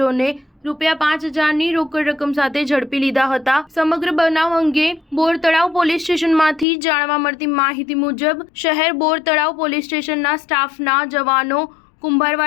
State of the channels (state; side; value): drops out; right; at 6.7 s